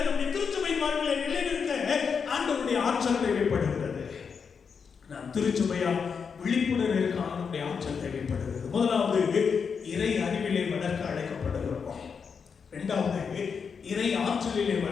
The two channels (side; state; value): right; quieter; 6.1 dB